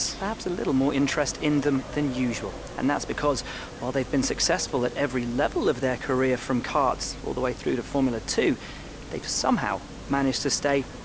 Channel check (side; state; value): both; identical; correlation 1.00